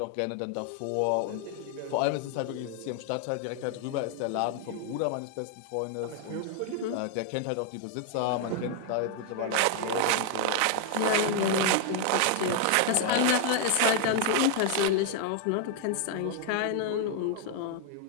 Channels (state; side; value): different; both; correlation 0.00